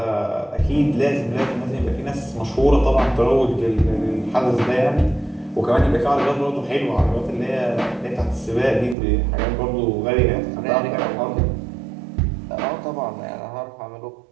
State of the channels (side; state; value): left; drops out; at 9.0 s